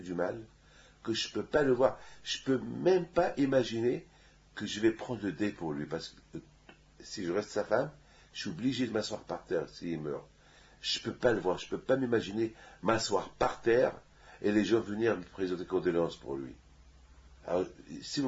mal que je ne peux pas le voir. Je ne peux même pas imaginer que je vais prendre le dé pour lui. Parce que si je reste sa femme, je suis obligé de m'asseoir par terre s'il meurt. Je ne peux pas le voir, je ne peux pas m'imaginer m'asseoir par terre et les gens venir me présenter condoléances pour lui. Alors, s'il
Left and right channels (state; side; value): identical; both; correlation 1.00